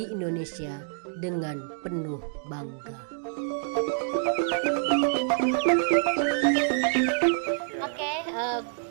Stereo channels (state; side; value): silent; left; digital silence